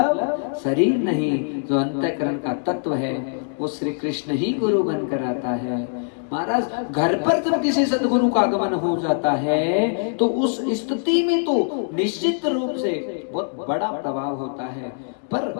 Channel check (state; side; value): silent; right; digital silence